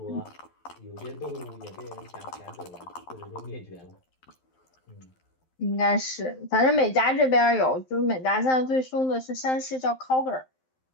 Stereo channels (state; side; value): late; right; 12 ms